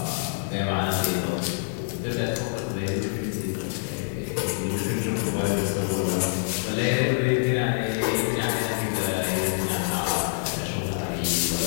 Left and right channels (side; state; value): right; silent; 61 dB below the other